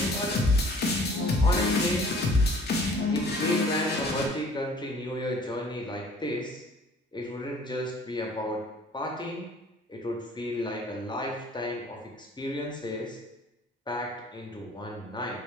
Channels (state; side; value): normal; both; correlation 0.53